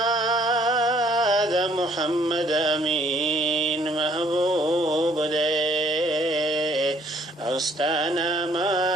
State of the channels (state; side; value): normal; both; correlation 0.62